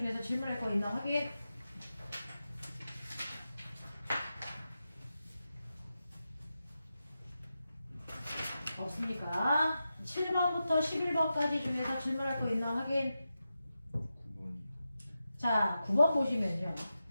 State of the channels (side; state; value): both; inverted; correlation -0.90